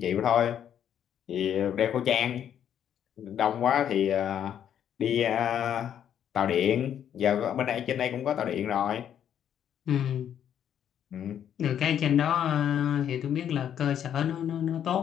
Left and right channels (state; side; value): quieter; right; 9.5 dB